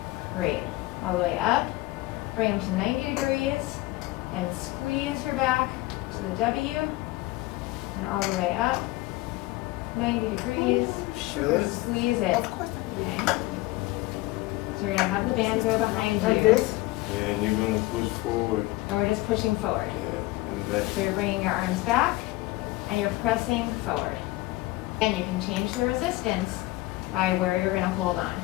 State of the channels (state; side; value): quieter; right; 19.4 dB